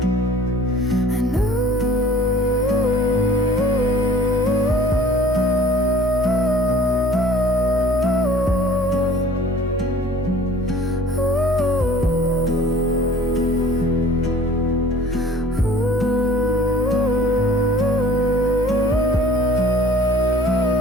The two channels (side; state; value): both; normal; correlation 0.49